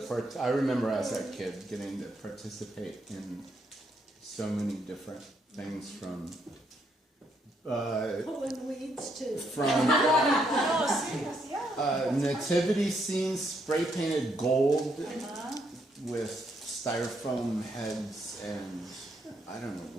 I remember as a kid getting to participate in so many different things from Pulling weeds too. Oh, serious, yeah. nativity scenes spray painted gold with styrofoam heads and I don't know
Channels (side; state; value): both; normal; correlation 0.75